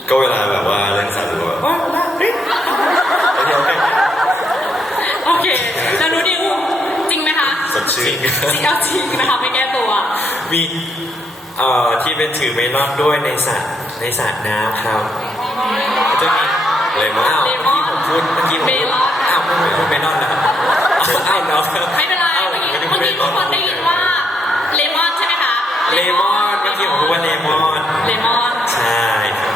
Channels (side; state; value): both; normal; correlation 0.75